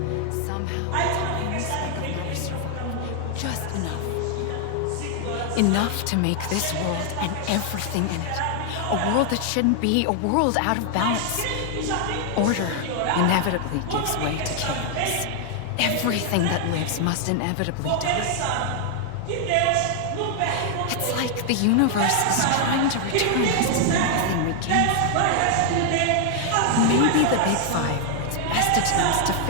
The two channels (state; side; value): different; both; correlation 0.00